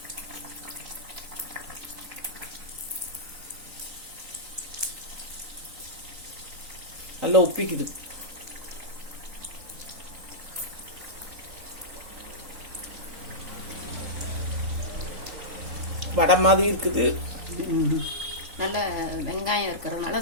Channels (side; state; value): left; late; 3.9 ms